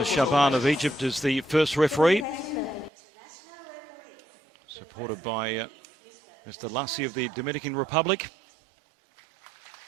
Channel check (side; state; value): left; drops out; at 2.9 s